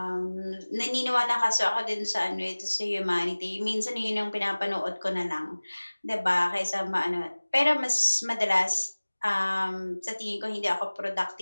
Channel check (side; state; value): both; inverted; correlation -1.00